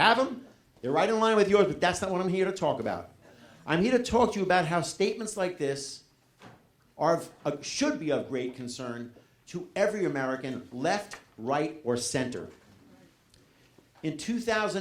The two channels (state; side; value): identical; both; correlation 1.00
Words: them. They're right in line with yours, but that's not what I'm here to talk about. I'm here to talk to you about how statements like this should be of great concern to every American, left, right, or center. In